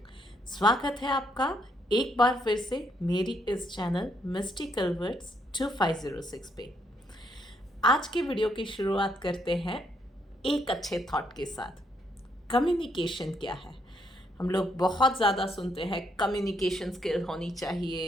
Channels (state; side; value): normal; both; correlation 0.73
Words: स्वागत है आपका एक बार फिर से मेरी इस चैनल मिस्टिकल वर्ड्स 2506 पे। आज के वीडियो की शुरुआत करते हैं एक अच्छे थॉट के साथ। कम्युनिकेशन क्या है? हम लोग बहुत ज़्यादा सुनते हैं कम्युनिकेशन स्किल होनी